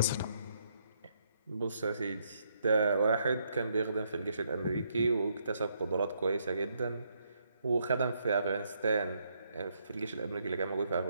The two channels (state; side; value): inverted; both; correlation -0.75